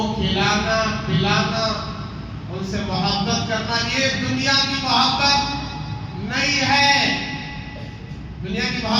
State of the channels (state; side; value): identical; both; correlation 1.00